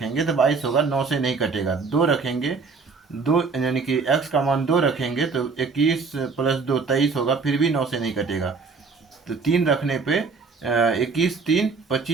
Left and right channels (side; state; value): left; quieter; 4.7 dB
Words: तो 22 होगा, 9 से नहीं कटेगा। 2 रखेंगे, 2 यानी कि x का मान 2 रखेंगे तो 21 + 2 23 होगा, फिर भी 9 से नहीं कटेगा। तो 3 रखने पे 21 3